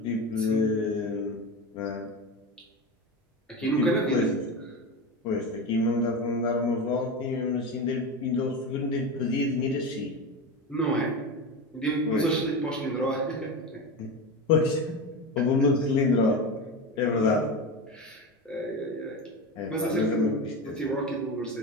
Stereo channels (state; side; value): normal; both; correlation 0.22